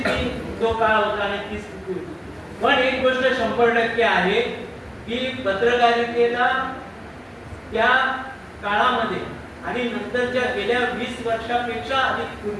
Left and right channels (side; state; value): both; identical; correlation 1.00